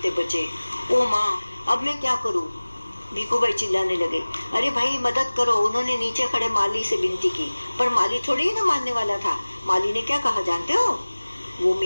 बचे। ओ माँ, अब मैं क्या करूं? भिखू भाई चिल्लाने लगे। अरे भाई, मदद करो। उन्होंने नीचे खड़े माली से विनती की, पर माली थोड़ी ही ना मानने वाला था। माली ने क्या कहा जानते हो? वो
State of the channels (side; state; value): both; inverted; correlation -1.00